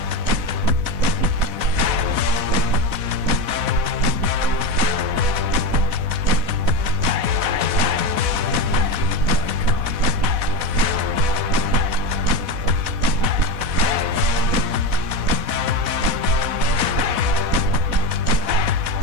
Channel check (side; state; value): left; late; 4.1 ms